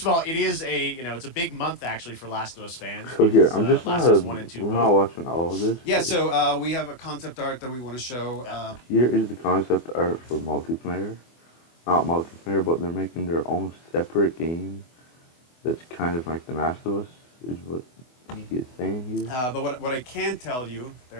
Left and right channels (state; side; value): late; right; 24 ms